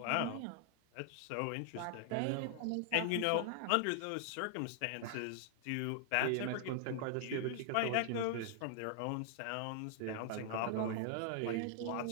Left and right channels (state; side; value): different; both; correlation 0.00